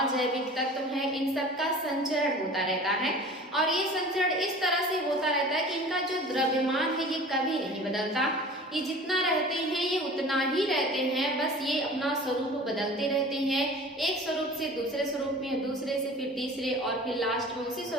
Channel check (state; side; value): normal; both; correlation 0.42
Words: तत्व हैं इन सब का संचरण होता रहता है और ये संचरण इस तरह से होता रहता है कि इनका जो द्रव्यमान है ये कभी नहीं बदलता। ये जितना रहते हैं ये उतना ही रहते हैं, बस ये अपना स्वरूप बदलते रहते हैं। एक स्वरूप से दूसरे स्वरूप में, दूसरे से फिर तीसरे और फिर लास्ट में उसी